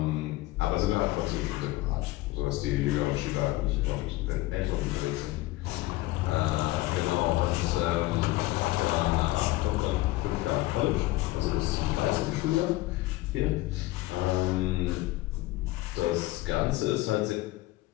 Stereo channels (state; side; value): quieter; right; 18.4 dB